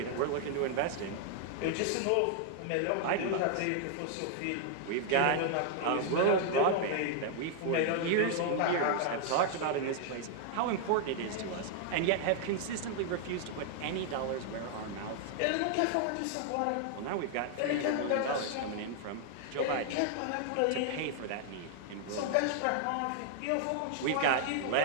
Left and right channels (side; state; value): both; different; correlation 0.00